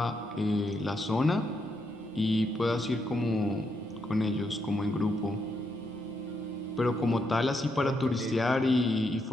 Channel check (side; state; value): both; normal; correlation 0.79